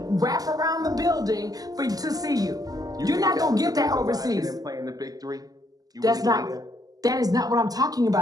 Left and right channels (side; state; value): left; late; 0.18 ms